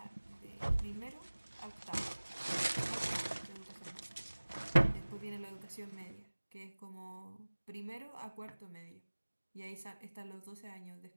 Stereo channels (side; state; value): both; inverted; correlation -1.00